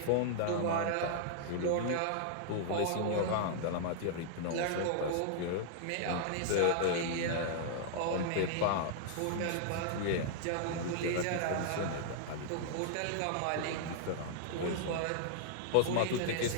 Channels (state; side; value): different; both; correlation -0.01